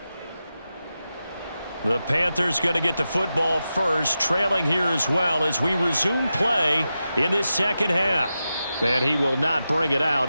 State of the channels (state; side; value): inverted; both; correlation -0.91